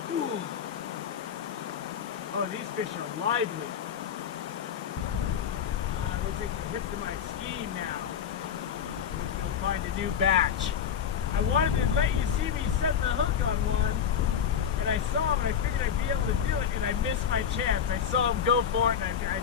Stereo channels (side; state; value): right; quieter; 8.1 dB